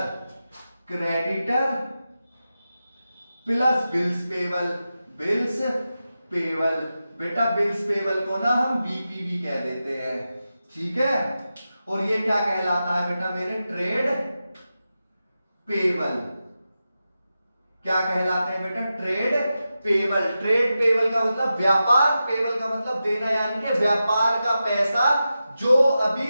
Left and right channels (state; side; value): inverted; both; correlation -0.91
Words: creditor plus bills payable, bills payable, बेटा बिल्स पेबल को ना हम बीपीबी कह देते हैं, ठीक है। और ये क्या कहलाता है बेटा मेरे, ट्रेड पेबल। क्या कहलाते हैं बेटा, ट्रेड पेबल। ट्रेड पेबल का मतलब व्यापार, पेबल का मतलब देना, यानी कि व्यापार का पैसा जो अभी